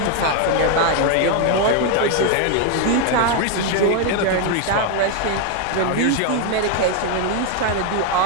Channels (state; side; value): different; both; correlation 0.01